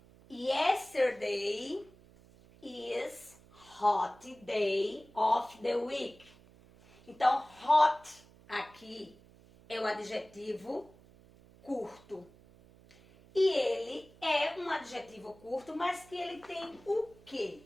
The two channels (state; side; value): noise; right; hum, 25 dB below the sound